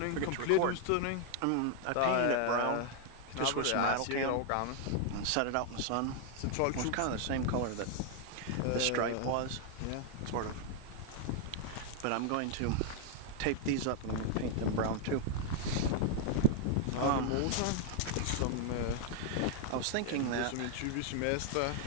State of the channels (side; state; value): both; different; correlation 0.00